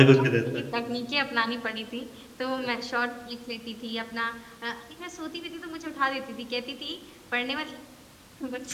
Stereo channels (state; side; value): identical; both; correlation 1.00